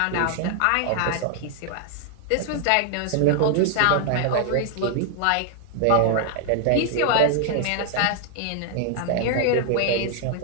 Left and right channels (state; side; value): different; both; correlation 0.00